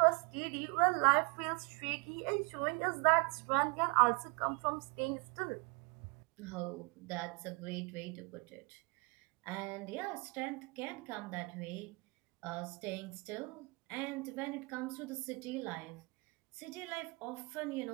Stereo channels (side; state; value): left; quieter; 29.5 dB